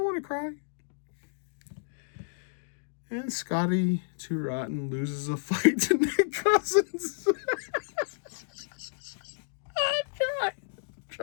want to cry. And Scotty Too Rotten loses a fight to Nick Cousins.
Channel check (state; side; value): silent; right; digital silence